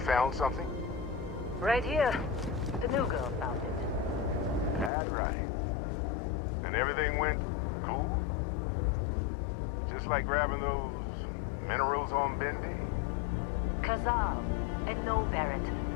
found something? Right here. The new girl found it. That's right. And everything went cool? Just like grabbing those minerals on Bendy? Kazal. And no, Barrett,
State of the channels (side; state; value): right; drops out; at 4.9 s